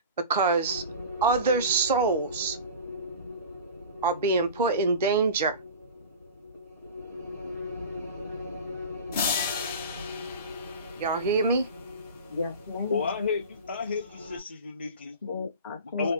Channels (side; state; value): both; inverted; correlation -0.34